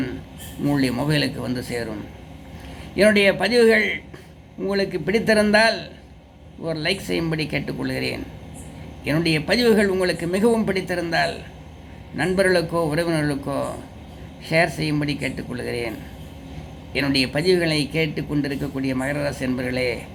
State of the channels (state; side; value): identical; both; correlation 1.00